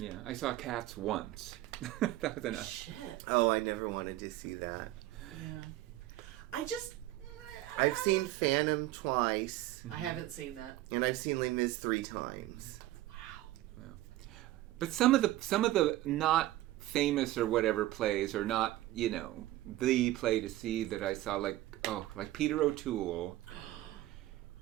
I saw Cats once. That was enough. Shit. Oh, I never wanted to see that. Yeah. I've seen Phantom twice. I haven't seen that. And I've seen Les Mis 3 times. Wow. But some of the not famous or whatever plays are not, the play to see that I saw, like Peter O'Toole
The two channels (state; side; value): quieter; left; 15.8 dB